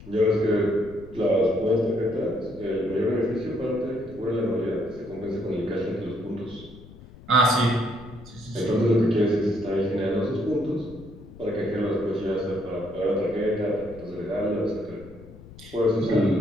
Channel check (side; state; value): left; noise; rumble, 18 dB below the sound